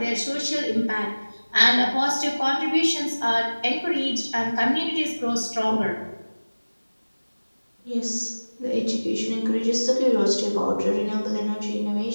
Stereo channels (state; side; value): inverted; both; correlation -1.00